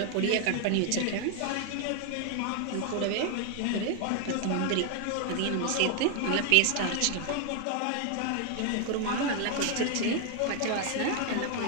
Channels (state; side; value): different; both; correlation 0.00